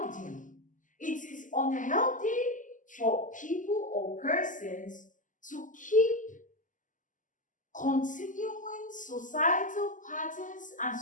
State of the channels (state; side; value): late; right; 0.37 ms